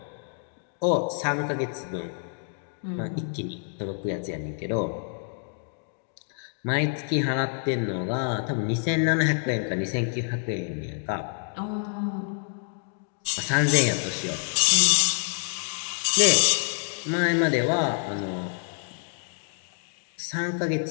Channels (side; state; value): right; silent; 59 dB below the other